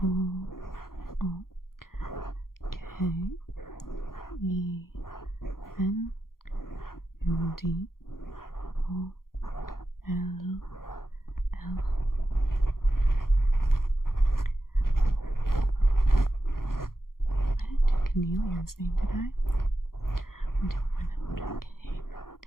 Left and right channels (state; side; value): late; right; 0.92 ms